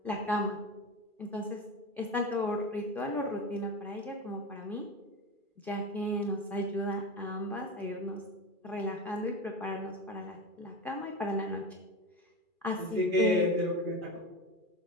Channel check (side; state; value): left; late; 2.4 ms